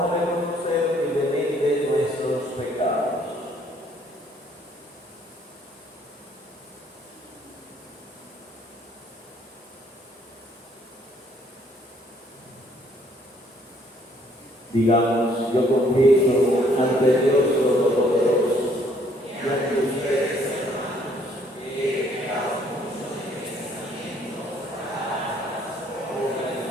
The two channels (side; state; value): both; normal; correlation 0.64